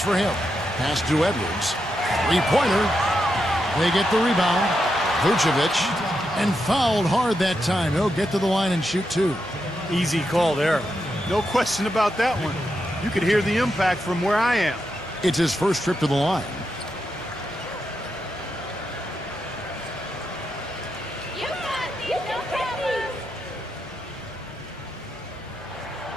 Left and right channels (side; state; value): both; normal; correlation 0.84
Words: for him. Pass to Edwards. 3-pointer. They get the rebound. Vucevic And fouled hard that time. He'll get to the line and shoot two. Easy call there. No question about that one. You could hear the impact from where I am. It's his first trip to the line. You got these, no problem.